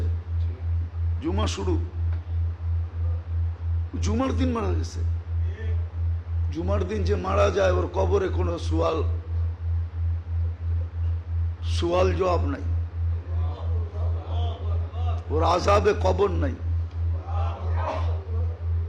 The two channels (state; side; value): identical; both; correlation 1.00